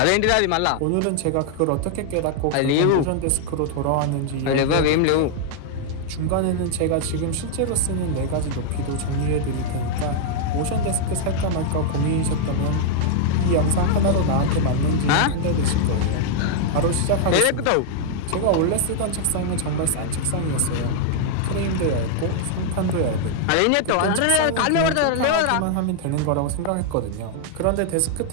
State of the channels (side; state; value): both; different; correlation 0.00